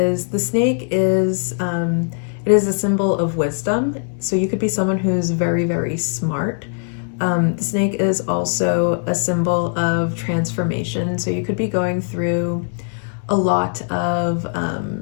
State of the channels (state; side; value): silent; right; 63 dB below the other